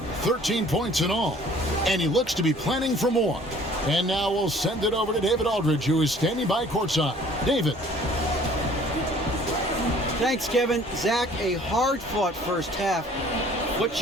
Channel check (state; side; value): normal; both; correlation 0.53